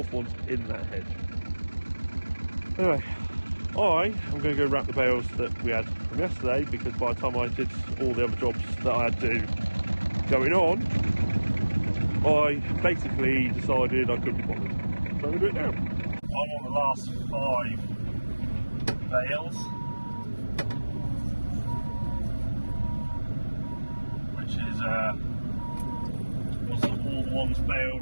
one's in that hedge. Anyway, I am going to go wrap the bales that we had from yesterday, because by the time I did all the other jobs that I had to going on, I basically decided I couldn't be bothered. So we'll do it now. I'm on the last 5 bales, which is all the ones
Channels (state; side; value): inverted; both; correlation -1.00